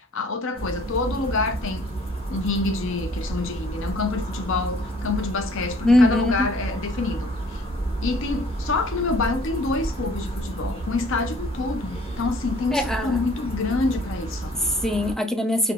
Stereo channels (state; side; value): normal; both; correlation 0.56